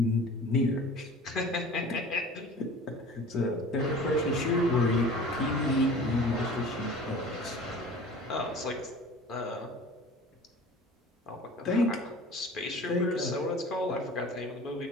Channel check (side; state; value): both; normal; correlation 0.42